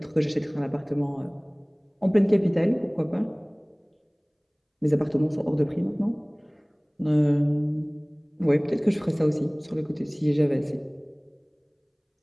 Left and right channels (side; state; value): both; identical; correlation 1.00